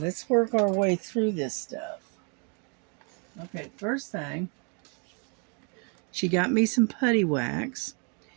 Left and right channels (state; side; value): quieter; left; 37.0 dB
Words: work our way through this stuff. Okay, first thing, she got me some putty wax